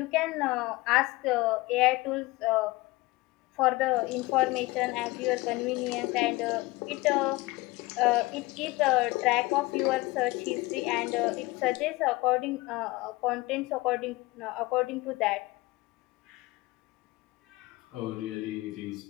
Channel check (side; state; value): right; quieter; 21.3 dB